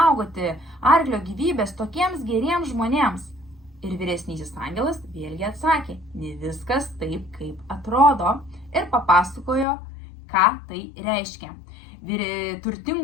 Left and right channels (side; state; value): right; drops out; at 9.7 s